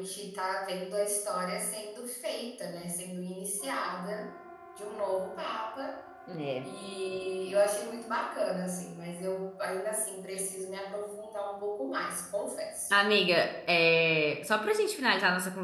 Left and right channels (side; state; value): both; identical; correlation 1.00